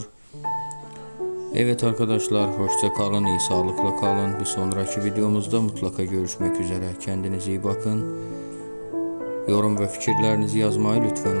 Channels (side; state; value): both; inverted; correlation -1.00